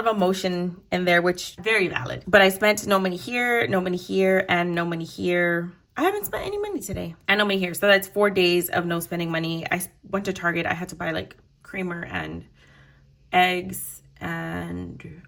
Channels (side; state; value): both; identical; correlation 1.00